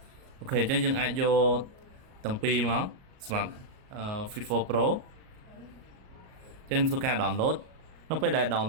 អូខេអញ្ចឹងយើងអាចយកទាំងពីរមកសម្រាប់ Fit 4 Pro អញ្ចឹងធ្វើការ download នៅពេលដែល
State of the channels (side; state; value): left; late; 38 ms